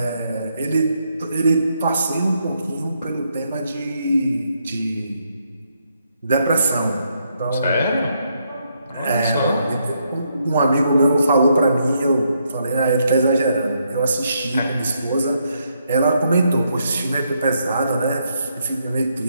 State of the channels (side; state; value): both; inverted; correlation -0.77